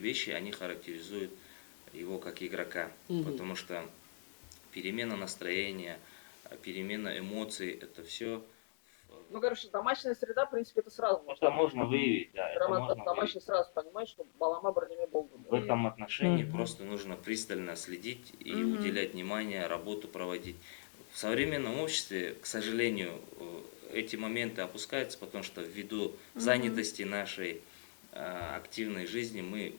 они характеризуют его как игрока, потому что перемена настроения, перемена эмоций, это все... Ну, короче, домашняя среда, в принципе, это сразу может определить. Можно выявить, да. Прямо домашний сразу понимать, что балама бірдеме болду. В этом отношении просто нужно пристально следить и уделять внимание, работу проводить. В современном обществе, к сожалению, эти моменты опускаются, потому что ввиду занятости нашей активной жизни мы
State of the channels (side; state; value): right; silent; digital silence